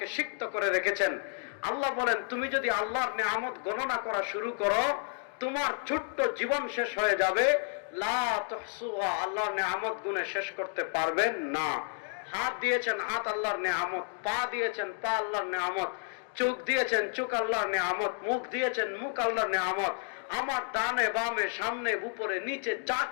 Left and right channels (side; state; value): right; silent; 57 dB below the other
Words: সিক্ত করে রেখেছেন। আল্লাহ বলেন, তুমি যদি আল্লাহর নিয়ামত গণনা করা শুরু করো, তোমার ছোট্ট জীবন শেষ হয়ে যাবে। লা তুহসুহা, আল্লাহর নিয়ামত গুণে শেষ করতে পারবেন না। হাত দিয়েছেন, হাত আল্লাহর নিয়ামত। পা দিয়েছেন, পা আল্লাহর নিয়ামত। চোখ দিয়েছেন, চোখ আল্লাহর নিয়ামত। মুখ দিয়েছেন, মুখ আল্লাহর নিয়ামত। আমার ডানে বামে সামনে উপরে নিচে যা